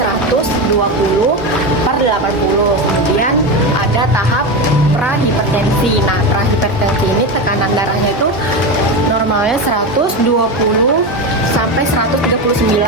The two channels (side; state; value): both; normal; correlation 0.18